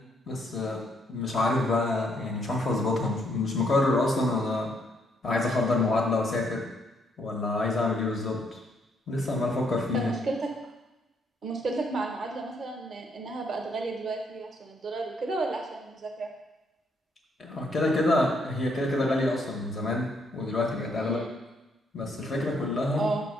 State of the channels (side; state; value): both; normal; correlation 0.72